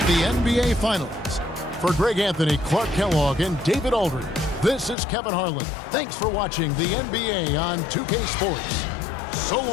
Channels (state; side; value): drops out; right; at 5.0 s